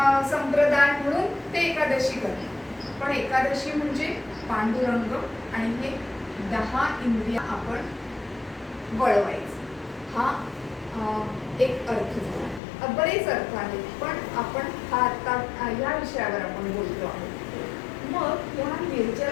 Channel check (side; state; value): right; drops out; at 12.6 s